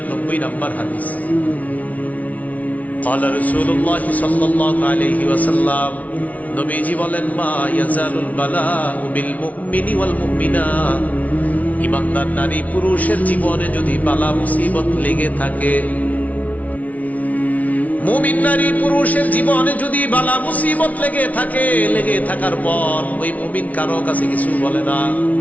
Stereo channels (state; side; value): late; right; 0.070 ms